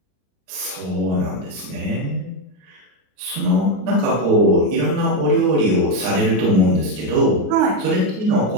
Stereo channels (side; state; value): left; late; 39 ms